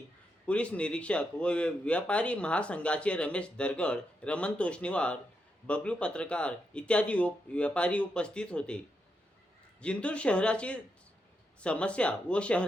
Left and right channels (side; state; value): both; normal; correlation 0.83